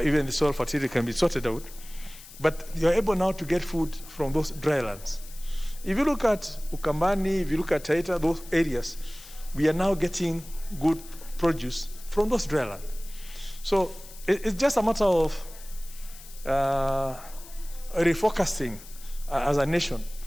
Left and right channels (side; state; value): left; noise; hiss, 18 dB below the sound